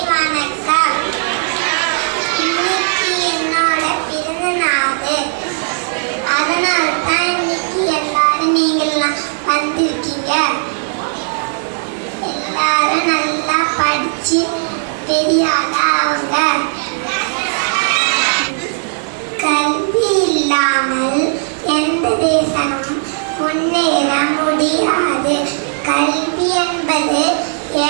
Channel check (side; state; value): left; silent; digital silence